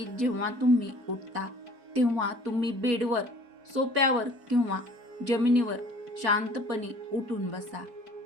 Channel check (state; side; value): late; left; 4.6 ms